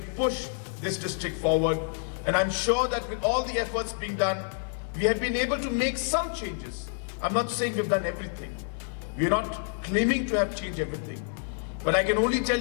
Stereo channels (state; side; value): silent; right; 59 dB below the other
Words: push this district forward. And I'm sure that with all the efforts being done, we have been able to make some changes. I'm not saying we've done everything. We're not claiming to have changed everything. But I can only tell